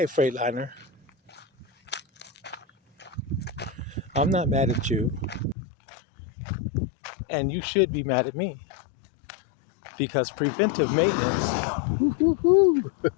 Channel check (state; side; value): drops out; right; at 5.6 s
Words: Freightliner, I'm not mad at you, and you should be mad at me because preventive maintenance